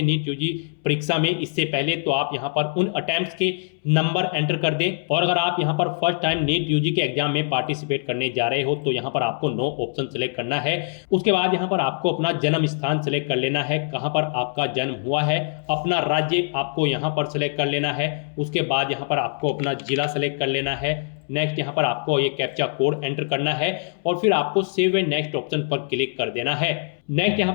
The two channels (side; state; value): right; silent; 63 dB below the other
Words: नीट यूजी परीक्षा में इससे पहले तो आप यहाँ पर उन अटेम्प्ट्स के नंबर एंटर कर दें। और अगर आप यहाँ पर फर्स्ट टाइम नीट यूजी के एग्जाम में पार्टिसिपेट करने जा रहे हो तो यहाँ पर आपको नो ऑप्शन सेलेक्ट करना है। उसके बाद यहाँ पर आपको अपना जन्म स्थान सेलेक्ट कर लेना है, कहाँ पर आपका जन्म हुआ है, अपना राज्य आपको यहाँ पर सेलेक्ट कर लेना है। उसके बाद यहाँ पर आपको अपना जिला सेलेक्ट कर लेना है। नेक्स्ट यहाँ पर आपको ये कैप्चा कोड एंटर करना है और फिर आपको सेव एंड नेक्स्ट ऑप्शन पर क्लिक कर देना है। नेक्स्ट यहाँ